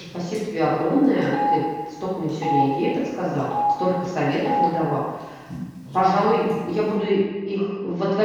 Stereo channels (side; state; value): both; identical; correlation 1.00